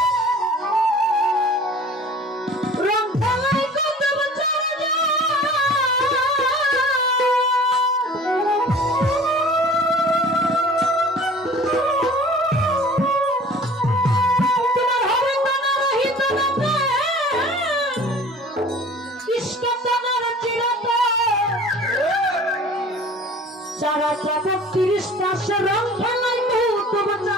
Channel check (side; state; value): both; normal; correlation 0.45